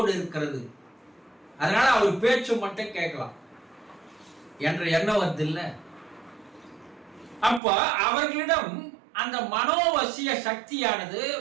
இருக்கிறது. அதனால அவர் பேச்சு மட்டும் கேட்கலாம் என்ற எண்ணம் வருது இல்ல. அப்ப அவர்களிடம் அந்த மனோவசிய சக்தியானது,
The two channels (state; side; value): drops out; left; at 7.6 s